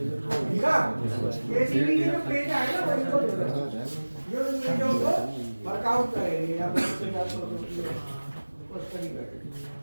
ठीक है। एसीबी के जो पेज आए ना वो वर्कआउट करेंगे या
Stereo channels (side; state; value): both; inverted; correlation -1.00